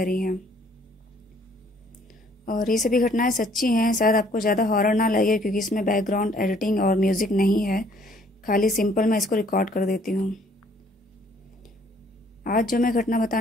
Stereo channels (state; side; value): normal; both; correlation 0.61